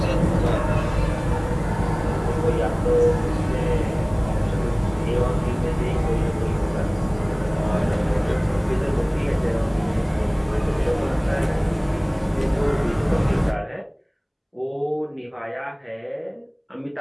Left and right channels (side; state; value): both; identical; correlation 1.00